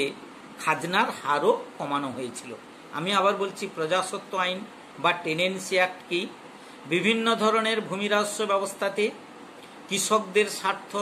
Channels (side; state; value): both; identical; correlation 1.00